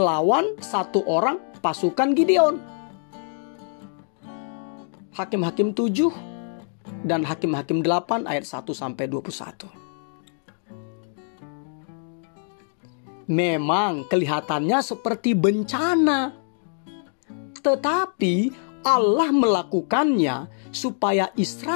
1 orang pasukan Gideon. Hakim-Hakim 7 dan Hakim-Hakim 8 ayat 1-21. Memang kelihatannya seperti bencana, tetapi Allah melakukannya supaya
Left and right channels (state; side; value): silent; right; digital silence